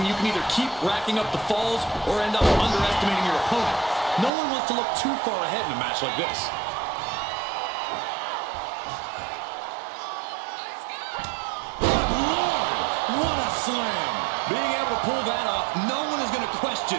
you can either keep racking up the falls or end up underestimating your opponent. No one wants to look too far ahead in a match like this. Good Lord! What a slam! Being able to pull that off, no one is going to question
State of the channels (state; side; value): drops out; left; at 4.3 s